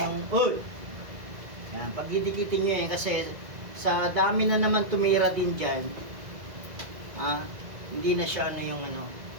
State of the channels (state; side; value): late; left; 2.0 ms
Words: Yan, pag didikitin nyo yan kasi sa dami na naman tumira din dyan, hindi na siya ano yung ano.